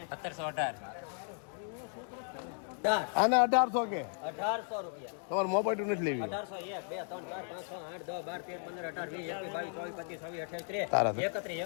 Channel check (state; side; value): silent; right; 54 dB below the other